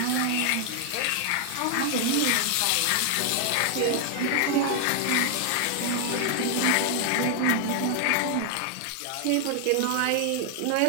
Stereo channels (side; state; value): both; different; correlation 0.00